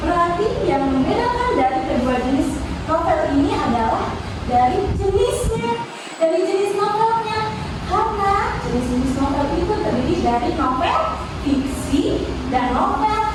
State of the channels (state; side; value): identical; both; correlation 1.00